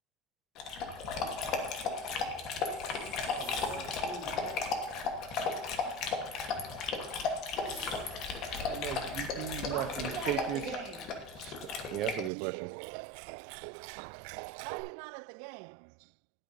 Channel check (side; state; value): left; drops out; at 12.3 s